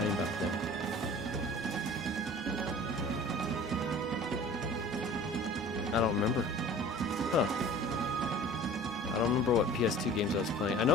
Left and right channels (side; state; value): both; normal; correlation 0.44